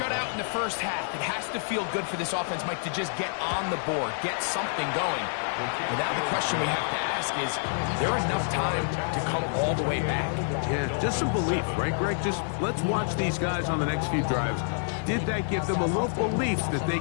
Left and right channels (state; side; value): silent; right; digital silence